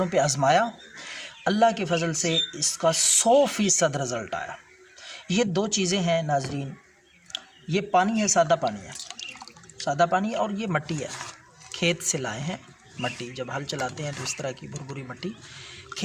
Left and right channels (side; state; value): both; identical; correlation 1.00